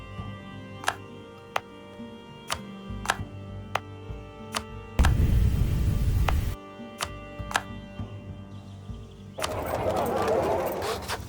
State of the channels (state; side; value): identical; both; correlation 1.00